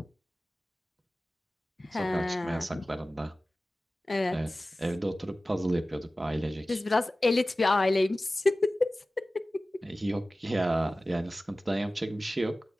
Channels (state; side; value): normal; both; correlation 0.96